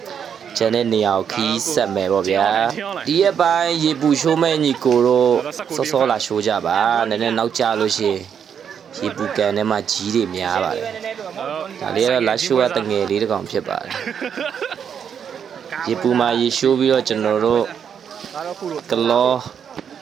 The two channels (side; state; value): left; quieter; 7.8 dB